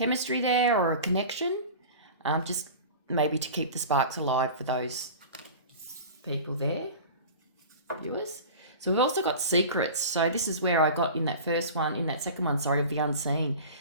there or a connection, just maybe to keep the sparks alive for those people there, viewers. So we've also got secrets. So this is where I got in that second one, of the unseen.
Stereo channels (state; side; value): inverted; both; correlation -0.36